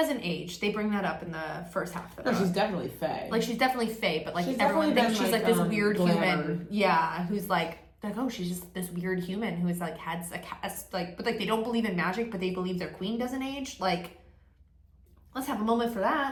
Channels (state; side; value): identical; both; correlation 1.00